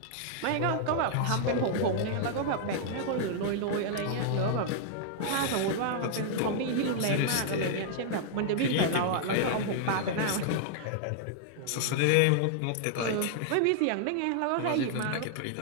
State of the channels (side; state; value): both; different; correlation -0.01